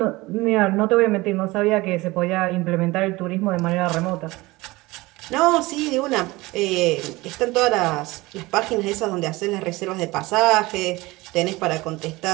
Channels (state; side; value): quieter; left; 21.1 dB